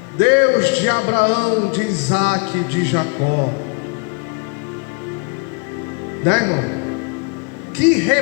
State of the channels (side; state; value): right; quieter; 34.5 dB